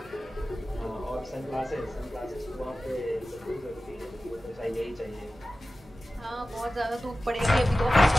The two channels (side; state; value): both; normal; correlation 0.95